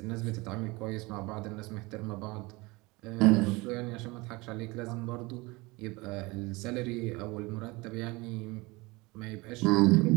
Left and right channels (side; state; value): left; quieter; 23.7 dB